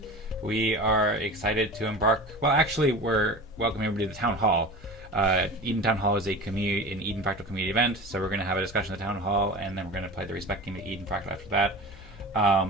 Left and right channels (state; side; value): normal; both; correlation 0.34